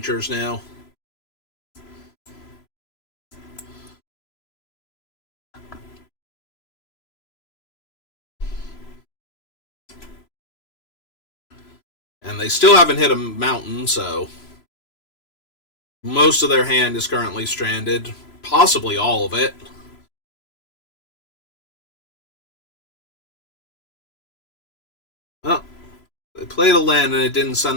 now. And they still haven't hit a mountain, so... Most of their hand is currently stranded. Possibly all of it. Oh, they played a land and it didn't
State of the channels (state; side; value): late; right; 3.0 ms